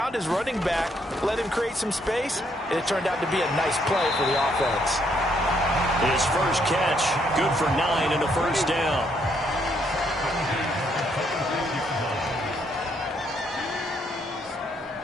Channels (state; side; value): normal; both; correlation 0.72